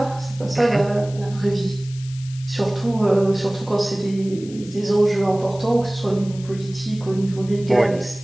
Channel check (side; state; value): left; noise; hiss, 20 dB below the sound